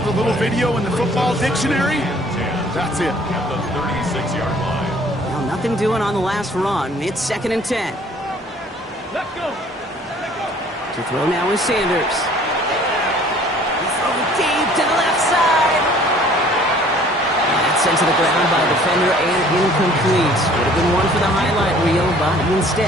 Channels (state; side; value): normal; both; correlation 0.54